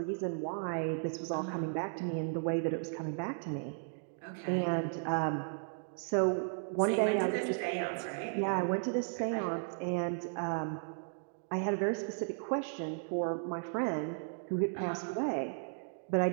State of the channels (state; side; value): silent; left; digital silence